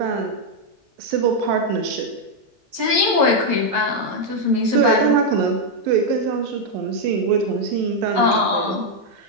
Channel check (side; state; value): left; late; 11 ms